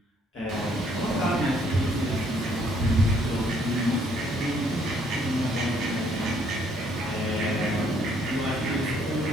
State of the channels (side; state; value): both; normal; correlation 0.66